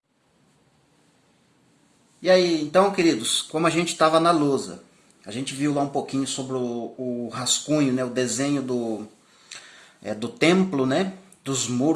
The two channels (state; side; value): identical; both; correlation 1.00